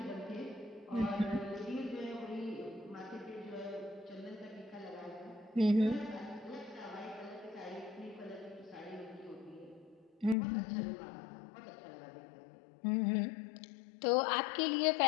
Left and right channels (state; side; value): drops out; right; at 10.4 s